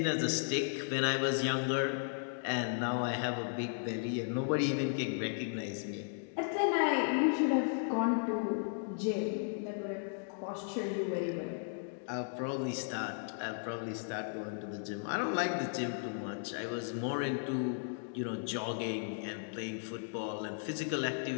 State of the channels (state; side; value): silent; right; digital silence